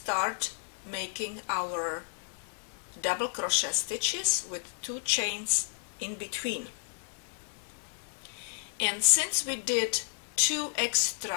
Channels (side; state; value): right; silent; digital silence